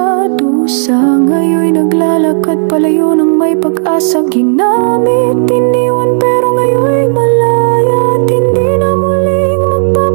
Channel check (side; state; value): left; silent; digital silence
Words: dusa, ngayon'y naglalakad palayo ng may pag-asa. Ginamit, iniwan, pero ngayon'y malaya. At hindi na muling